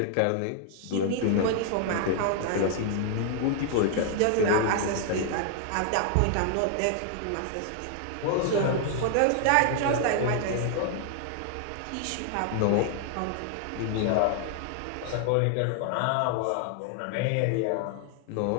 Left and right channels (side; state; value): both; different; correlation 0.00